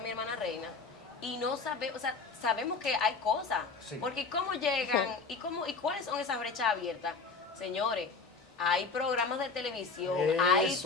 hermana Reina, y no sabemos, o sea, sabemos que hay cosas. Sí. Porque cómo llegan y cuáles son esas brechas abiertas. Señores, hay programas de televisión,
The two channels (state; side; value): quieter; right; 4.5 dB